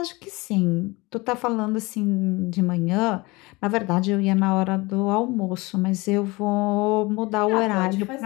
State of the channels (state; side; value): quieter; right; 23.5 dB